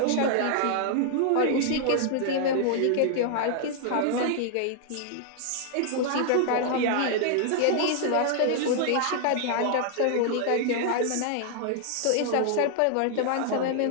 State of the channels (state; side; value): different; both; correlation 0.00